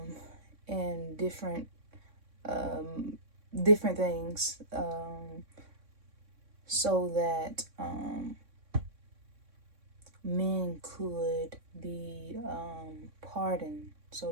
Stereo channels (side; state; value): left; late; 3.6 ms